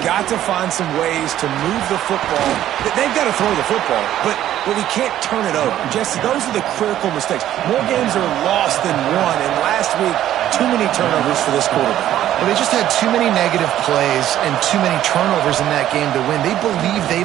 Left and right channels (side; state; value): left; quieter; 12.3 dB